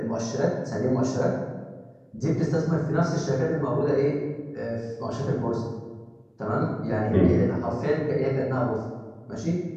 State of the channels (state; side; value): identical; both; correlation 1.00